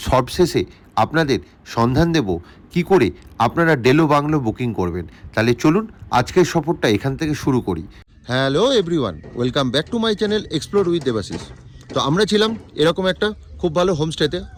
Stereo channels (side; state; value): both; identical; correlation 1.00